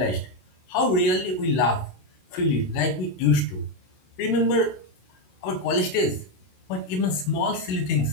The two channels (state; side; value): late; right; 16 ms